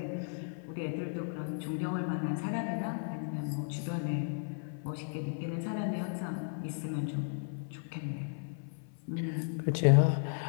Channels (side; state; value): right; silent; 55 dB below the other